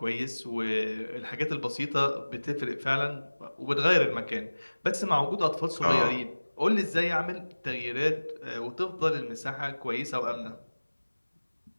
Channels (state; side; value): inverted; both; correlation -1.00